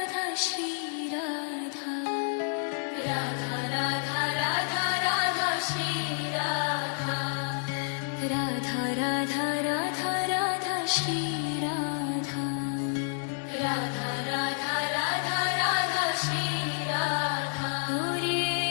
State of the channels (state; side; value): silent; right; digital silence